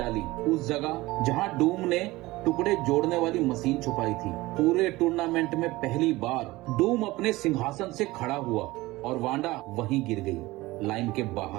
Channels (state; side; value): quieter; left; 19.7 dB